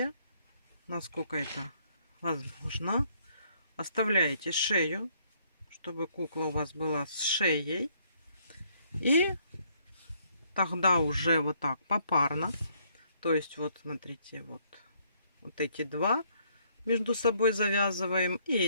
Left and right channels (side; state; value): both; inverted; correlation -0.68